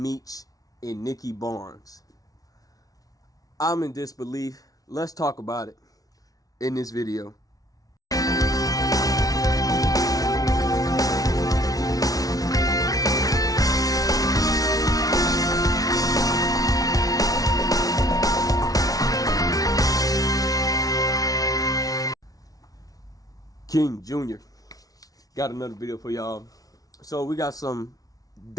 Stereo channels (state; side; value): late; right; 0.18 ms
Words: and Nicky Barnes. I'm in disbelief. Let's talk about it in this video. King Jr. got another video for y'all. So we got some